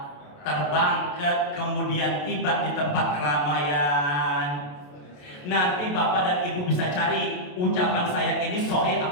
terbang kemudian tiba di tempat keramaian. Nanti Bapak dan Ibu bisa cari ucapan saya ini sahih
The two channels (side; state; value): right; late; 28 ms